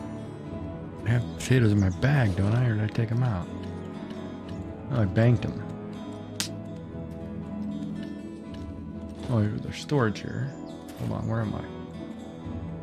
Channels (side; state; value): both; identical; correlation 1.00